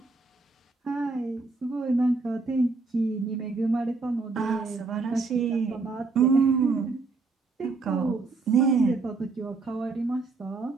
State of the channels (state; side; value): quieter; left; 4.0 dB